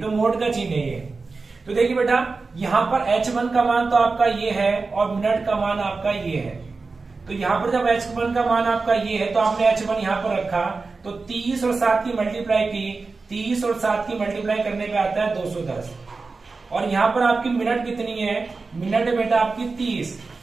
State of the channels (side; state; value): left; quieter; 4.1 dB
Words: तो मोड का चिन्ह है ये। तो देखिए बेटा यहां पर H1 का मान तो आपका ये है और मिनट का मान आपका ये है। तो यहां पर जब H1 का मान आपका ये है तो आपने H1 यहां पर रखा, तो 30 और 7 की मल्टीप्लाई की, 30 और 7 की मल्टीप्लाई करने पे आता है 210। और यहां पर आपकी मिनट कितनी है, मिनट बेटा आपकी 30।